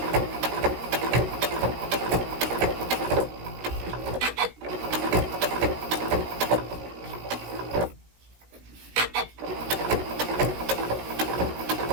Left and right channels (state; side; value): late; left; 17 ms